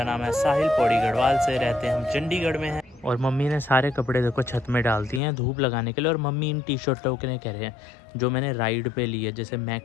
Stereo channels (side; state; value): right; drops out; at 5.2 s